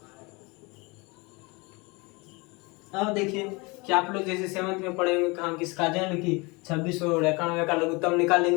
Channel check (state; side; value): quieter; right; 26.8 dB